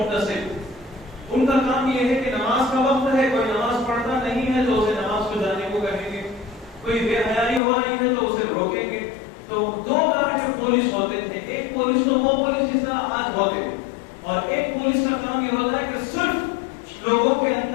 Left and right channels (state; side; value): drops out; right; at 7.6 s